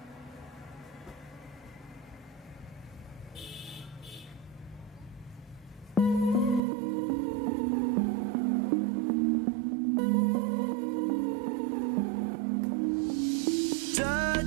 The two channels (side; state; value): left; drops out; at 6.6 s